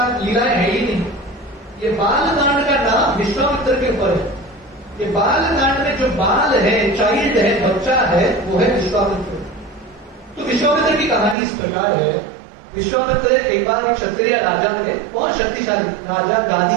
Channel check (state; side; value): drops out; left; at 11.4 s